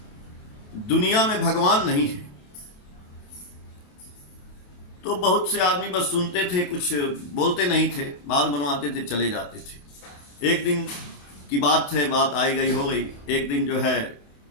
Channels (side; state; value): right; late; 28 ms